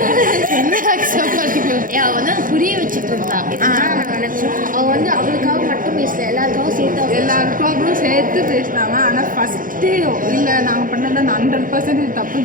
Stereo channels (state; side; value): late; left; 0.40 ms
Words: அவள் வந்து புரிய வச்சுட்டு இருந்தான். அவள் வந்து அவளுக்காக மட்டும் பேசல, எல்லாருக்காகவும் சேர்த்து பேசினாங்க. ஆனால் ஃபஸ்ட்டு இல்லை நாங்கள் பண்ணதை 100%